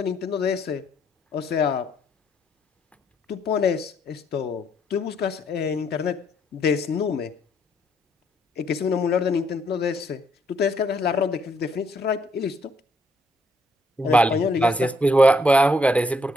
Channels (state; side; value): normal; both; correlation 0.71